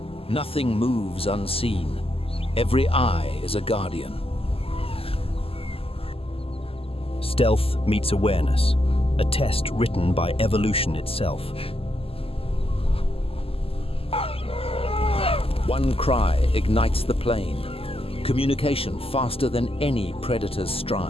nothing moves unseen. Every eye is a guardian. Stealth meets awareness, a test written by evolution itself. One cry ignites the plain. Communication faster than any predator's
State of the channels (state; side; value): late; right; 0.28 ms